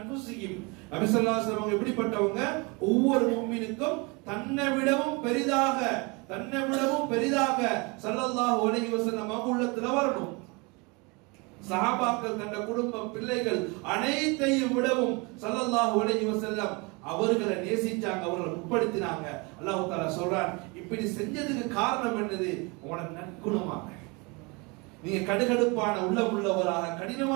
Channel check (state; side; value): quieter; left; 28.7 dB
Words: நபி ஸல்லல்லாஹு அலைஹி வஸல்லம் எப்படிப்பட்டவங்க, ஒவ்வொரு முஃமினுக்கும் தன்னை விடவும் பெரிதாக ஸல்லல்லாஹு அலைஹி வஸல்லம் அவங்க உள்ளத்துல வரணும். சஹாபாக்கள் தன்னுடைய குடும்பம் பிள்ளைகள் அனைத்தையும் விடவும் ஸல்லல்லாஹு அலைஹி வஸல்லம் அவர்களை நேசிச்சாங்க, அவர்களை உட்படுத்தினாங்க. அல்லாஹ் தஆலா சொல்றான், இப்படி செஞ்சதுக்கு காரணம் என்னது, உங்களோட நற்குணமாக. நீங்க கடுகடுப்பான உள்ளம் உள்ளவராக,